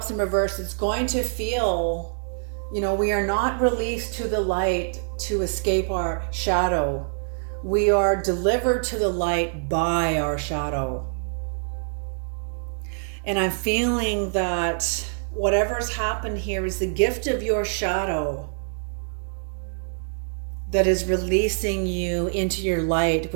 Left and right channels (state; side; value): silent; left; digital silence